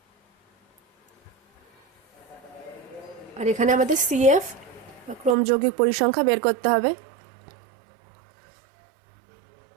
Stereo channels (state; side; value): drops out; left; at 5.4 s